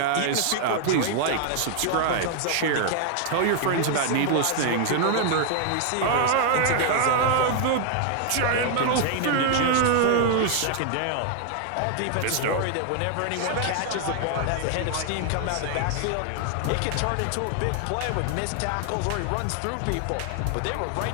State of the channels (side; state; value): both; different; correlation 0.00